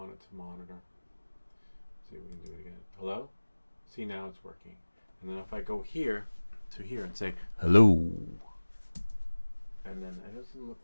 it to monitor. See if we can do it again. Hello? See, now it's working. And then if I go here to here and say hello, and then it doesn't look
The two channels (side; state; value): both; inverted; correlation -1.00